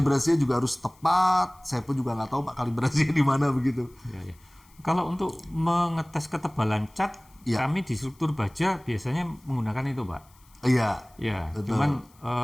juga harus tepat. Saya pun juga nggak tahu Pak kalibrasinya di mana begitu. Ya, ya. Kalau untuk mengetes ketebalan cat, Ya. kami di struktur baja biasanya menggunakan itu Pak. Iya. Ya, Betul. cuman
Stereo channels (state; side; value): noise; left; hiss, 30 dB below the sound